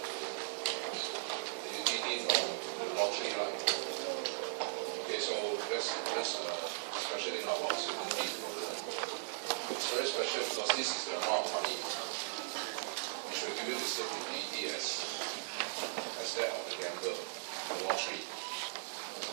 The UTD from the lottery, right? Okay, so that's special thing about certainty. It's very special because this is the amount of money which will give you the same UTD as that of the gambler, the lottery.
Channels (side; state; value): left; silent; digital silence